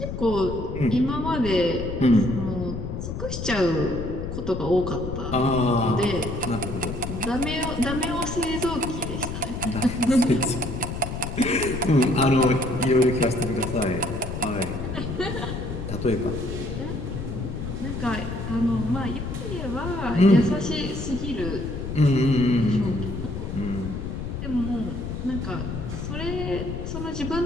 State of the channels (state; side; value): noise; left; rumble, 6 dB below the sound